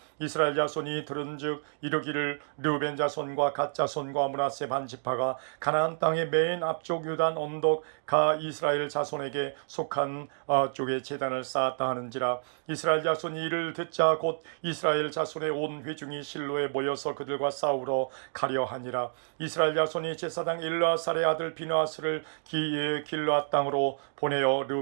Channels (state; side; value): silent; left; digital silence